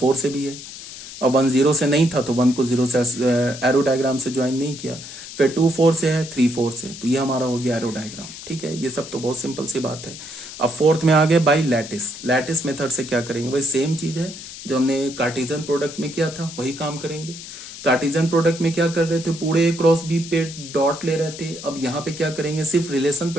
से भी है, और 1 0 से नहीं था, तो 1 को 0 से एरो डायग्राम से ज्वाइन नहीं किया। फिर 2 4 से है, 3 4 से, तो ये हमारा हो गया एरो डायग्राम। ठीक है, ये सब तो बहुत सिंपल सी बात है। अब फोर्थ में आ गए बाई लैटिस। लैटिस मेथड से क्या करेंगे? वही सेम चीज है जो हमने कार्टेशियन प्रोडक्ट में किया था, वही काम करेंगे। कार्टेशियन प्रोडक्ट में क्या कर रहे थे? पूरे ए क्रॉस बी पे डॉट ले रहे थे। अब यहाँ पे क्या करेंगे? सिर्फ रिलेशन पे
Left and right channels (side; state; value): left; noise; hiss, 13 dB below the sound